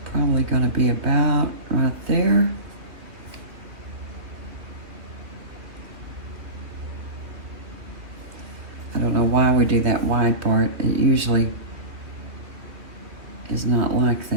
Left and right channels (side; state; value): left; late; 2.6 ms